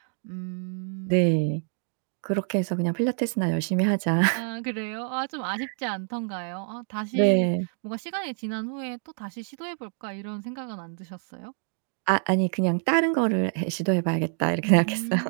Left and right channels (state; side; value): silent; left; 60 dB below the other